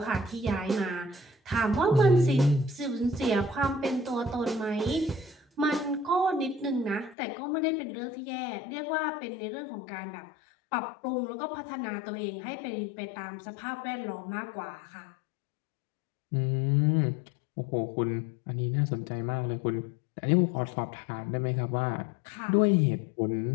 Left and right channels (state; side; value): drops out; right; at 7.2 s